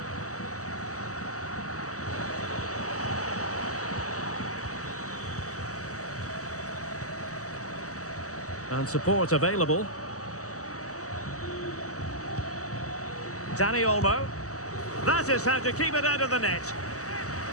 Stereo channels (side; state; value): right; late; 0.66 ms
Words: And support available. Dani Olmo. That is how to keep it out of the net.